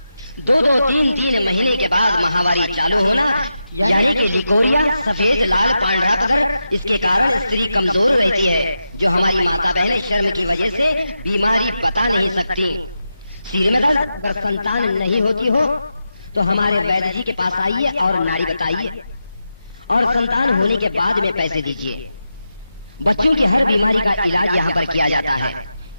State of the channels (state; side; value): inverted; both; correlation -0.89